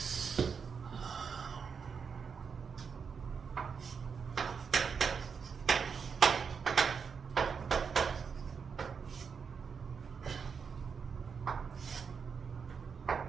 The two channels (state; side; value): quieter; left; 6.1 dB